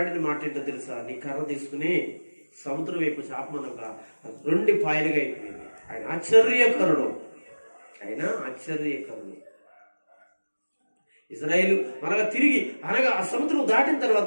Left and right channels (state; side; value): inverted; both; correlation -1.00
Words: మాట ఏంటో తెలుసా? నీ కర్ర తీసుకుని సముద్రం వైపు చాపమనగా 2 పాయలుగా అయిపోయింది. ఆయన ఆశ్చర్యకరుడు. ఆయన ఆశ్చర్యకరుడు. ఇజ్రాయేలు మరలా తిరిగి అనగా ఆ సముద్రం దాటిన